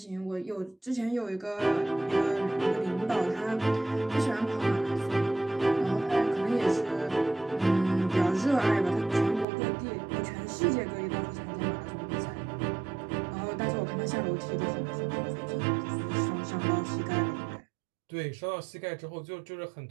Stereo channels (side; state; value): left; drops out; at 9.5 s